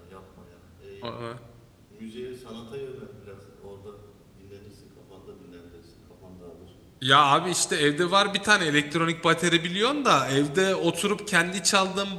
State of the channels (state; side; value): identical; both; correlation 1.00